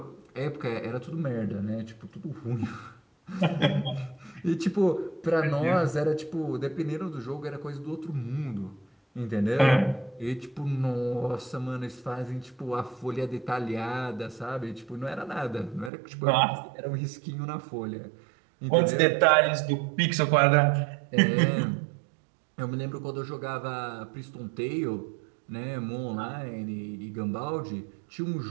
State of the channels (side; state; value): left; drops out; at 15.9 s